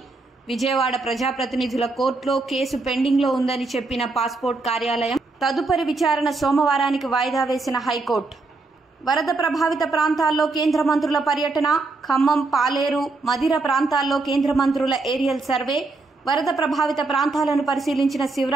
విజయవాడ ప్రజాప్రతినిధుల కోర్టులో కేసు పెండింగ్లో ఉందని చెప్పిన పాస్పోర్ట్ కార్యాలయం. తదుపరి విచారణ సోమవారానికి వాయిదా వేసిన హైకోర్టు. వరద ప్రభావిత ప్రాంతాల్లో కేంద్ర మంత్రుల పర్యటన. ఖమ్మం, పాలేరు, మదిర ప్రాంతాల్లో కేంద్ర మంత్రుల ఏరియల్ సర్వే. వరద ప్రభావిత ప్రాంతాలను పరిశీలించిన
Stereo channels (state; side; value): quieter; left; 3.5 dB